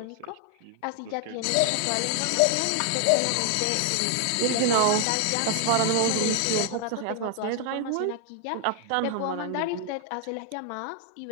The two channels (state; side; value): different; both; correlation 0.00